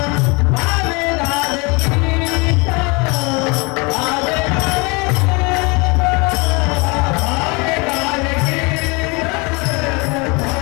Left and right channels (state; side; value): quieter; right; 28.7 dB